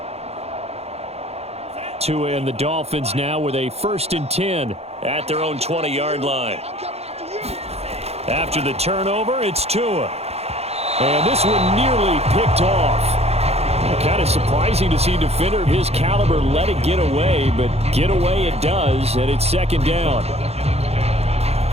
Tua and the Dolphins now with a 1st and 10 at their own 20-yard line. After the turnover, it's Tua. And this one nearly picked off. Kind of surprising to see a defender of his caliber let it get away, but get away it does, and it's 2nd down.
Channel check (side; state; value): left; late; 0.30 ms